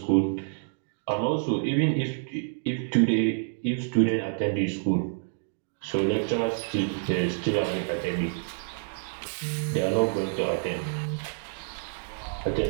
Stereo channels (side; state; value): left; silent; digital silence